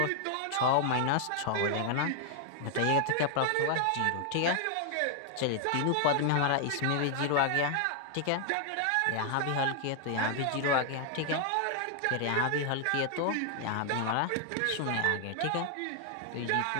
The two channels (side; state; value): both; different; correlation 0.00